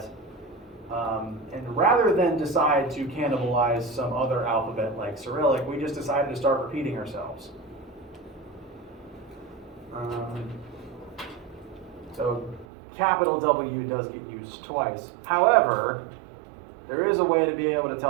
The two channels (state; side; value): drops out; left; at 12.7 s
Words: and rather than decide to cannibalize some other alphabet like Cyrillic, we just decided to start repeating ourselves. So capital W does get used twice. However, there is a way to be able to